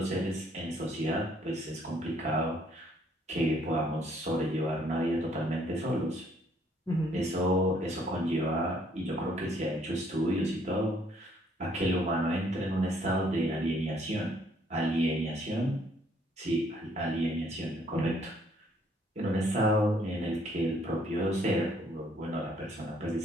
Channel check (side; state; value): both; normal; correlation 0.65